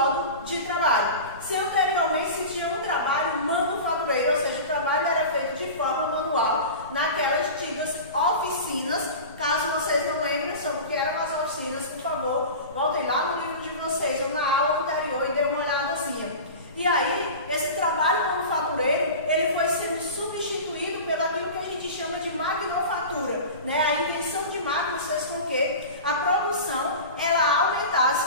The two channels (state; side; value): inverted; both; correlation -0.32